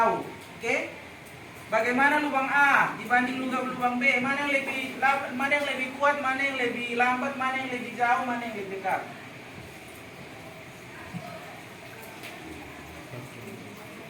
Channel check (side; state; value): both; identical; correlation 1.00